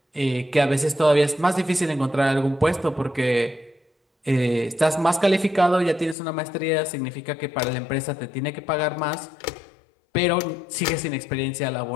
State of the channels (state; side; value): drops out; right; at 6.2 s